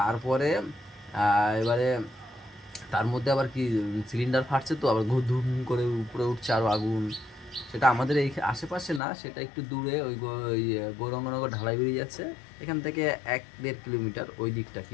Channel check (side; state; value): right; drops out; at 9.0 s